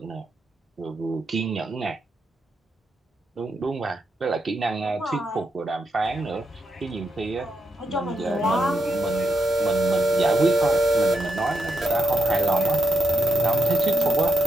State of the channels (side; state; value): both; normal; correlation 0.83